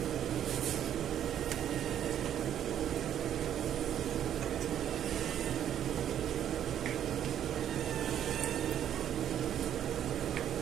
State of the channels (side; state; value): left; quieter; 10.2 dB